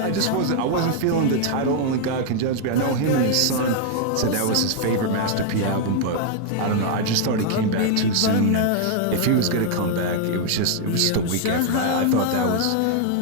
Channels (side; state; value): both; different; correlation 0.00